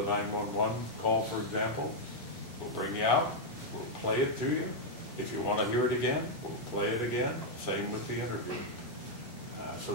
911 call, for example, we'll bring you out, we'll play it to you. If you want to hear it again, we'll play it again. Same with the interview. So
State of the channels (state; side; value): normal; both; correlation -0.03